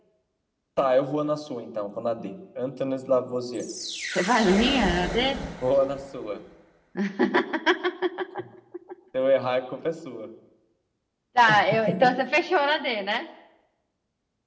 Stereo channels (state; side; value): identical; both; correlation 1.00